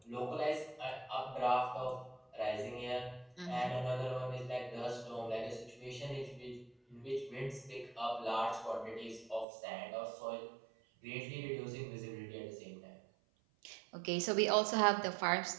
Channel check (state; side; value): drops out; left; at 9.5 s